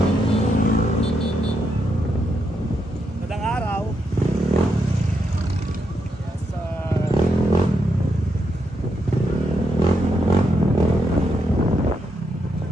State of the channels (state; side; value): normal; both; correlation 0.81